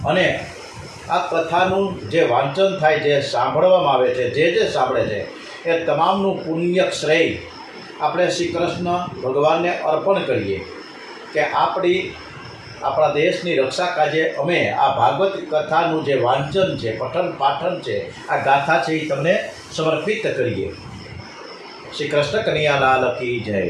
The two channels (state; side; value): identical; both; correlation 1.00